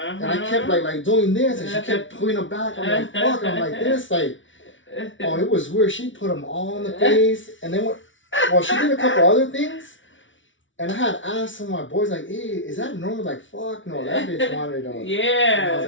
I kept like doing this, and she kept pulling them back. I'm like, fuck. I'm like this, like, oh, it was weird. She put them all in the face, and then she did a couple other things. And I had asked some of my boys, like, hey, is that normal? Like, fuck, no, that bitch wanted to. Yeah. And I was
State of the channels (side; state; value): right; late; 0.56 ms